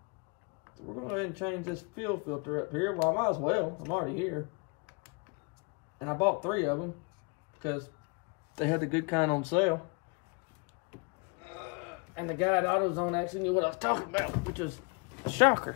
So we're going to go ahead and change this fuel filter up here. Well, I might as well. I'm already here. And I bought 3 of them because they had the good kind on sale. And the guy at AutoZone actually knew what I was talking about, which was a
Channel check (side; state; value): right; quieter; 32.6 dB